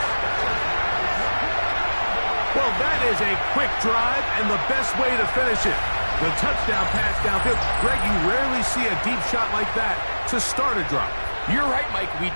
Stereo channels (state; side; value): inverted; both; correlation -1.00